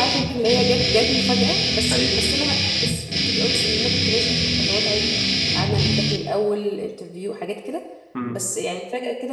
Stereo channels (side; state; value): both; identical; correlation 1.00